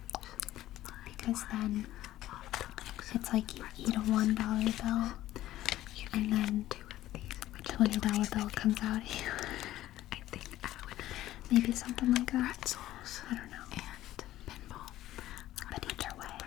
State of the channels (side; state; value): right; quieter; 14.4 dB